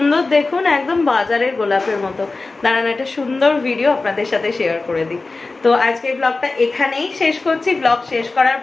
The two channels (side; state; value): right; quieter; 3.6 dB